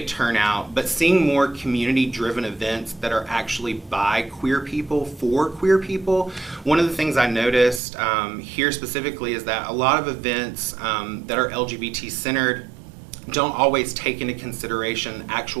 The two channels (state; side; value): drops out; left; at 7.8 s